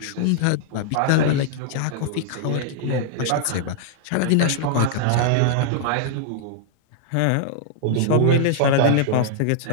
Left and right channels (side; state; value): both; different; correlation -0.01